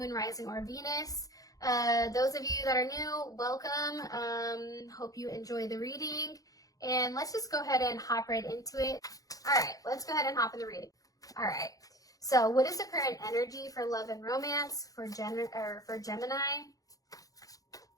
Rising, or Venus. Those of you that are new, welcome. Hope you enjoy the reading. And let's just go ahead and hop right into it. All right, let's go ahead and hop in the reading. All right, so what is the current energy for love and romance for Gemini?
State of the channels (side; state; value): right; late; 0.17 ms